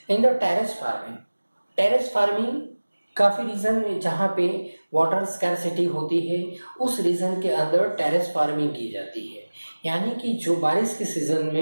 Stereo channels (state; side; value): inverted; both; correlation -1.00